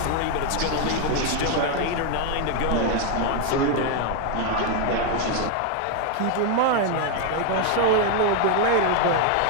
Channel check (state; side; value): different; both; correlation 0.00